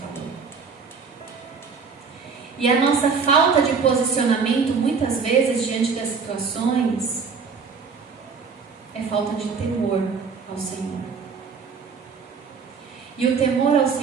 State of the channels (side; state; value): left; quieter; 5.4 dB